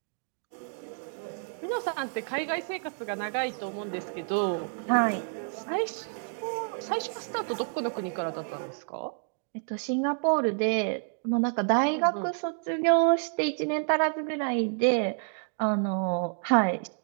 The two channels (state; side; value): silent; left; 58 dB below the other